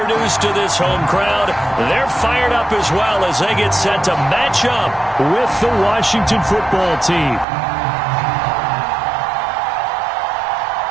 to this home crowd. They're fired up as well as they get set to match up with the Washington football team.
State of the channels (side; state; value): left; drops out; at 7.5 s